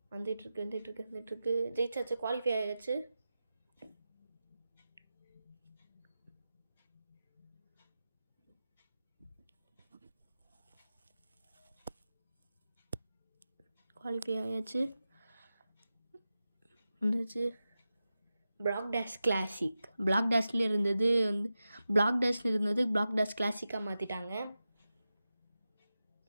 வந்துட்டுருக்கு. ஜெயிச்சாச்சு. குவாலிஃபை ஆயாச்சு. வந்துச்சு. Black dash classic. பிளாக் டேஷில் இருந்தது பிளாக் டேஷ் கிளாசிக்காக மாற்றிட்டாங்க.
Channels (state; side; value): inverted; both; correlation -0.93